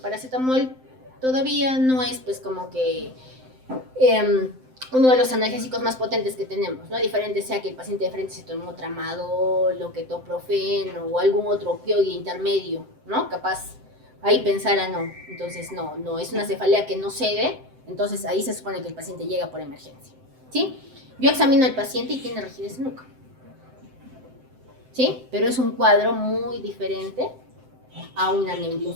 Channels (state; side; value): late; left; 7.8 ms